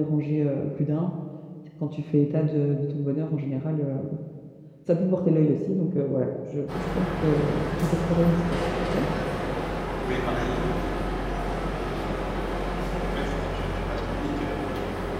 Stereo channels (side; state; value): both; identical; correlation 1.00